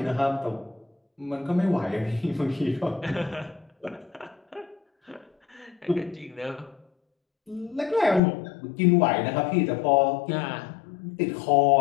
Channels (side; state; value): right; drops out; at 8.2 s